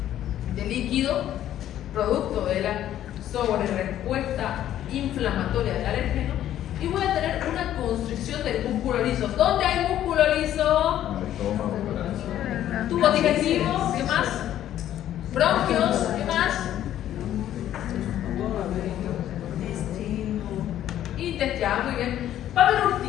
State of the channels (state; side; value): quieter; right; 11.9 dB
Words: de líquido, producto de la sobrerespuesta inflamatoria del alérgeno, y voy a tener una constricción del músculo liso. ¿Dónde hay músculo liso? Tubo digestivo, ¿qué más? Bronquios, ¿qué más? Intestinal, muy bien. Va a haber